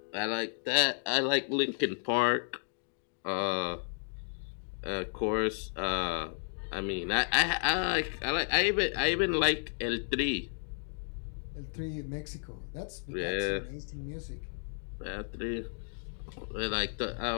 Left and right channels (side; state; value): right; silent; digital silence